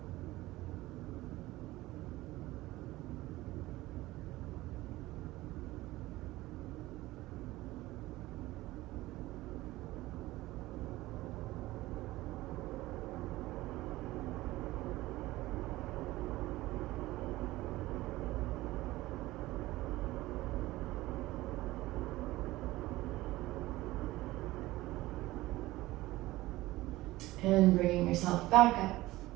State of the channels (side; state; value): left; quieter; 18.0 dB